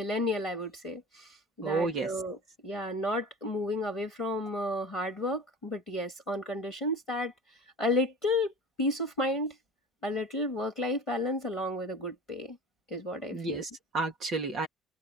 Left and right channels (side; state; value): both; normal; correlation 0.36